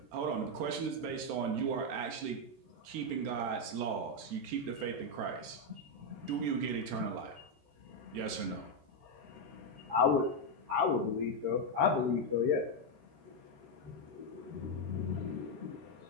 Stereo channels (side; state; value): left; late; 13 ms